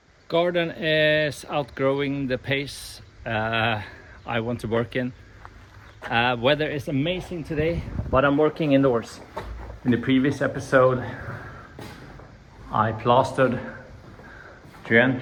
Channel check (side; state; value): both; identical; correlation 1.00